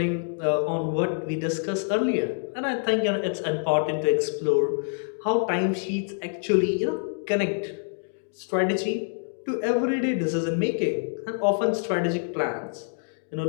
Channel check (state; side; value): silent; right; 61 dB below the other